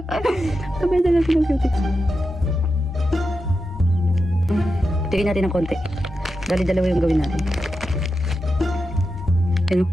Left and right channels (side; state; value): both; normal; correlation 0.89